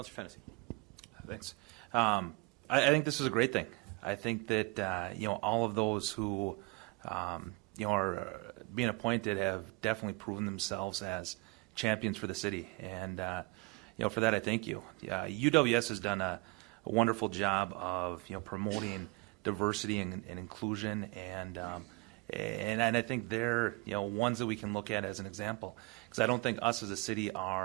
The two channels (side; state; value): left; quieter; 26.5 dB